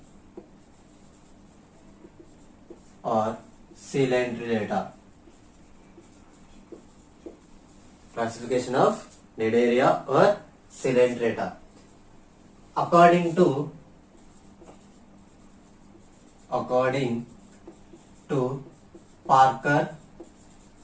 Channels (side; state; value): both; identical; correlation 1.00